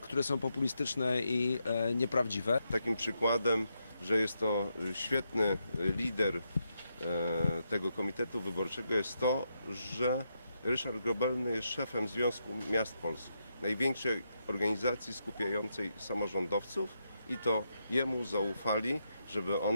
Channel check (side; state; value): both; inverted; correlation -0.82